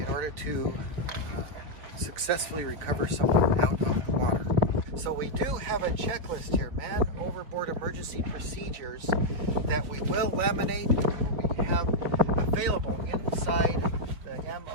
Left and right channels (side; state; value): left; late; 4.1 ms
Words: order to successfully recover someone out of the water. So we do have a checklist here, man overboard emergency procedures, that we will laminate and we have available inside the